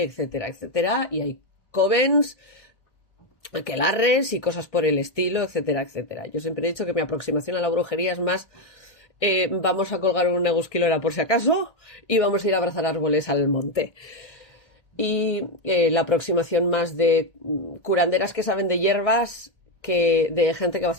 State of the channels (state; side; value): late; right; 1.6 ms